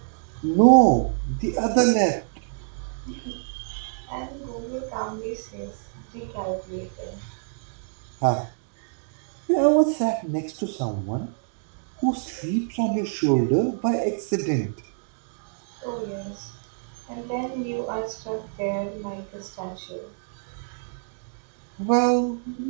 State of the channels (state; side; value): silent; left; digital silence